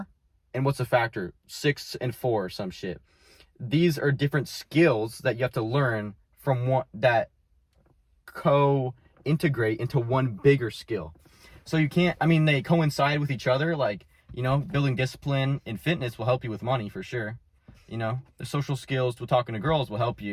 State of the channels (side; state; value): both; identical; correlation 1.00